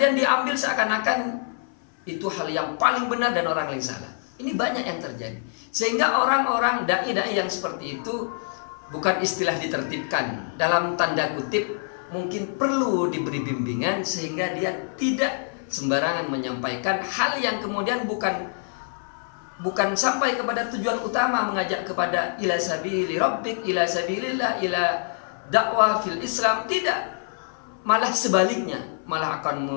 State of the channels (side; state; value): right; silent; 58 dB below the other